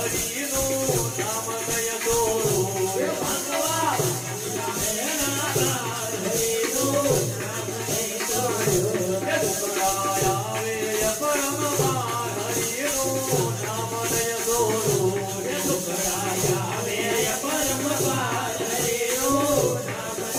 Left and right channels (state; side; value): identical; both; correlation 1.00